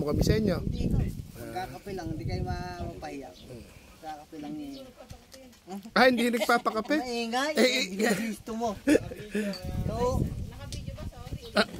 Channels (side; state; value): both; identical; correlation 1.00